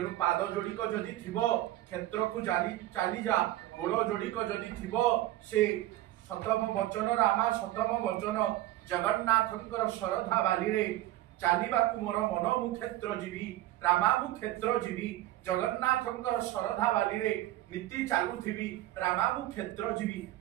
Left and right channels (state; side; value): quieter; left; 15.4 dB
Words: पाद जोड़िक जदि थिबो क्षेत्र को चली जा गोड़ जोड़िक जदि थिबो से सतम वचन रामा सतम वचन जगन्नाथंकर श्रद्धा बाली रे चालिबाकु मोर मन मु क्षेत्र जीवी रामा मु क्षेत्र जीवी जगन्नाथंकर श्रद्धा बाली रे नीति चालू थिबी रामा मु क्षेत्र जीवी